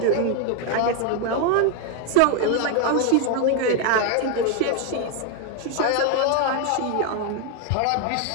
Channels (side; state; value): both; different; correlation 0.01